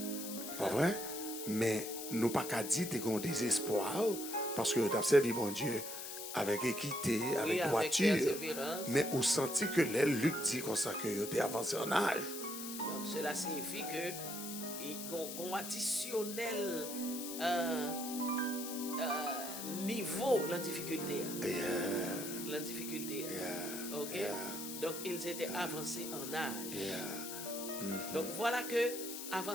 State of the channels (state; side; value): noise; left; hiss, 7 dB below the sound